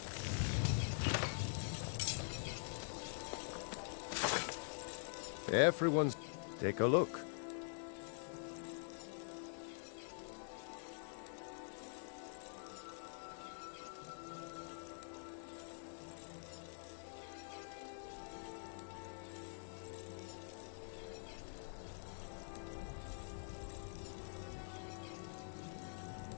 Everyone's... Take a look.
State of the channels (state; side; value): silent; right; digital silence